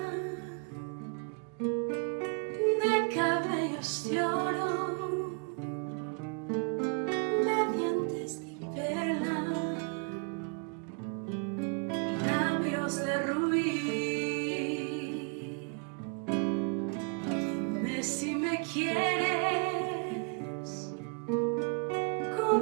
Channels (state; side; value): quieter; left; 36.2 dB